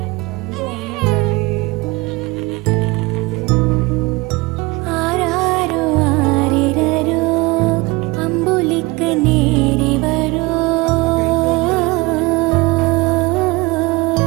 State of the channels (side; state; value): left; quieter; 23.5 dB